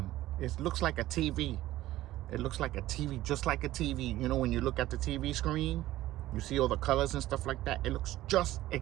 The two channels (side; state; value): left; quieter; 15.5 dB